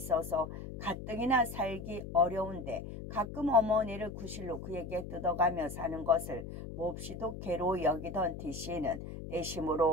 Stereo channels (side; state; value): left; noise; hum, 9 dB below the sound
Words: 가뜩이나 살기 어려운데 가끔 어머니를 구실로 그에게 뜯어가며 사는 것을 몹시도 괴로워 여기던 T씨는